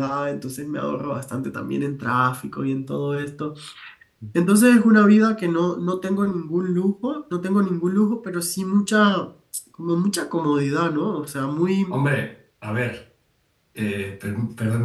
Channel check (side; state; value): both; identical; correlation 1.00